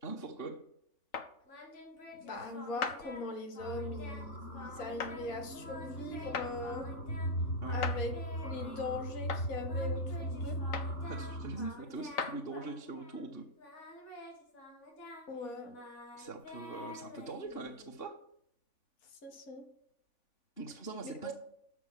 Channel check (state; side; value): late; right; 3.5 ms